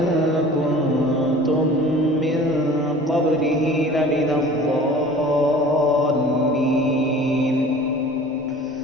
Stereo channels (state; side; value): noise; right; rumble, 28 dB below the sound